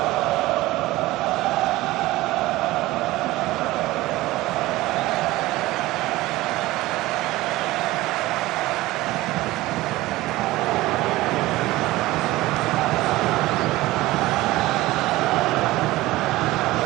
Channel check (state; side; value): quieter; left; 18.3 dB